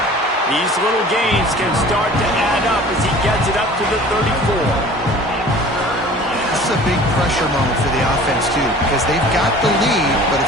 These little gains can start to add up as he gets it up to the 34. This is a big pressure moment for the offense, too, because they've got the lead, but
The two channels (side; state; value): both; normal; correlation 0.45